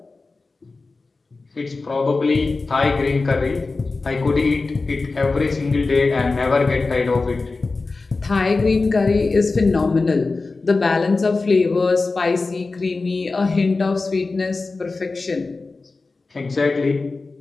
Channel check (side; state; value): right; quieter; 3.8 dB